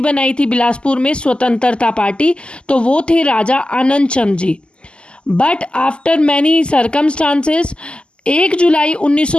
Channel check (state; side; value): late; right; 0.051 ms